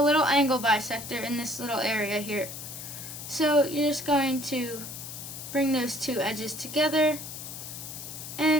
little angle bisector in this little area here. So you're just going to bring those two edges together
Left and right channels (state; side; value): noise; left; hiss, 10 dB below the sound